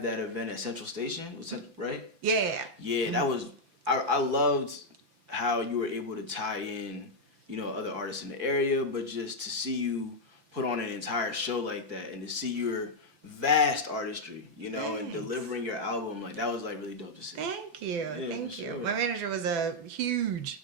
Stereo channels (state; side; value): late; left; 5.9 ms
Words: that event at Central Station, right? Yeah. Yeah, that was. I loved how you were able to tie in, other artists in the area, but just to see you put on an entire show like that and to see your vast artistry, and delivering your album, like that was like really dope to see. Thank you. Yeah, Thank you. sure. My manager was a